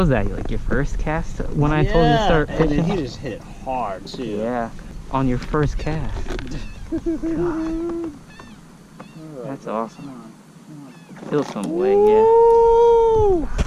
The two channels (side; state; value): both; identical; correlation 1.00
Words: that? Like your first cast when I told you to start fishing? And he just hit it hard too. Yeah, on your first cast. God. That's awesome. Feel some way, yeah.